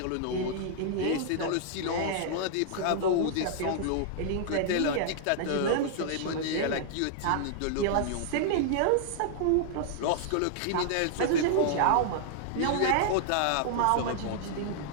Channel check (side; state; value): both; different; correlation -0.01